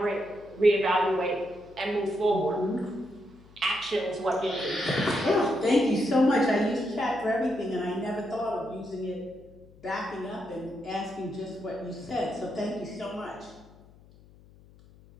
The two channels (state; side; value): noise; left; hum, 24 dB below the sound